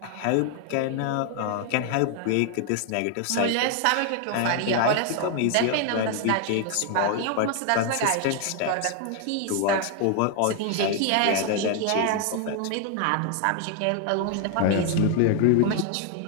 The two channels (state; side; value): different; both; correlation 0.00